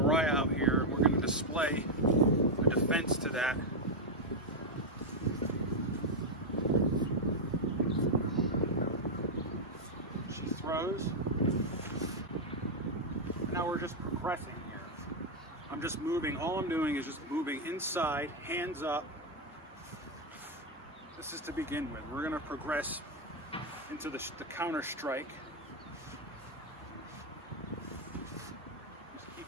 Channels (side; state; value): both; normal; correlation 0.00